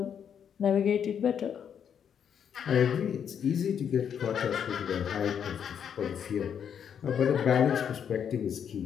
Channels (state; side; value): quieter; right; 8.1 dB